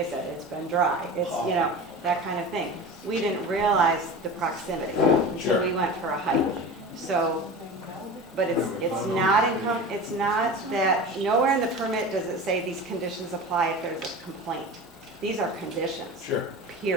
said, it's been dry. It's, you know, that kind of thing. We didn't realize the proximity until Sure. we went for a hike. So, but it's not that, nowhere in the permit does it say these conditions apply if there's a complaint. These are conditions. Sure.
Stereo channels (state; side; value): normal; both; correlation 0.32